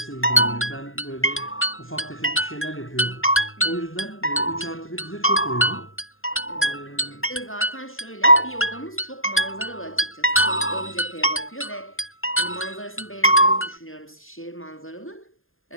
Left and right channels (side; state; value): right; late; 0.60 ms